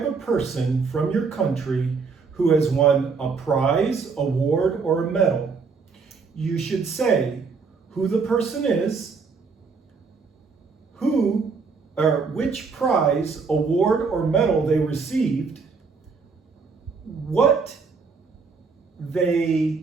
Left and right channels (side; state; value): left; quieter; 4.9 dB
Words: a person from your country who has won a prize, award, or a medal. You should say who the person is, which prize, award, or medal they received, what they